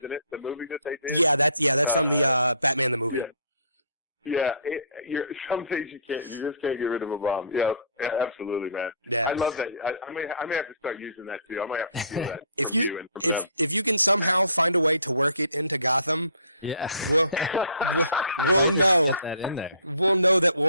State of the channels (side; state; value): both; inverted; correlation -0.55